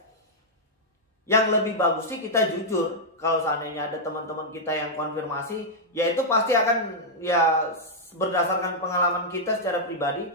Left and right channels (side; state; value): both; normal; correlation -0.05